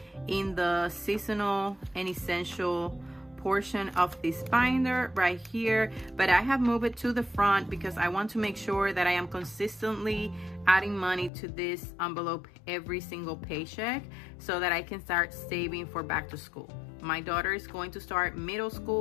in the seasonal and essential portion of this binder right here, but I have moved it to the front because I want to make sure that I am consistently adding money to this envelope every single paycheck so that I can start saving for back to school. My daughter is going to start middle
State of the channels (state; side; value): drops out; right; at 11.3 s